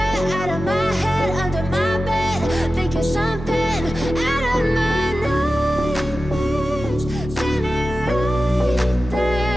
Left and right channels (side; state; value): both; normal; correlation 0.94